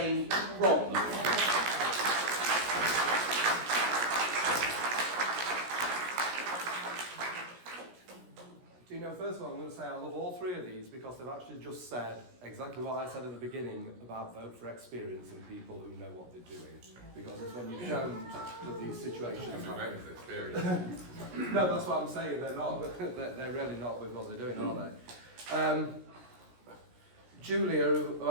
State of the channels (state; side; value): late; left; 17 ms